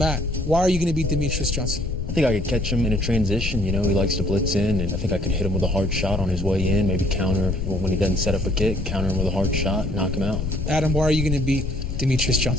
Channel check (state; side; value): noise; left; rumble, 3 dB below the sound